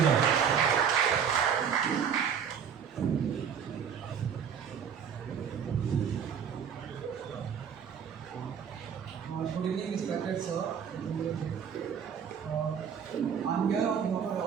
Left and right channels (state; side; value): quieter; left; 7.6 dB